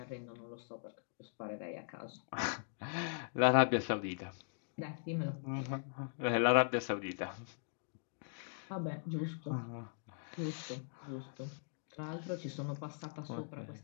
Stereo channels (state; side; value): silent; right; digital silence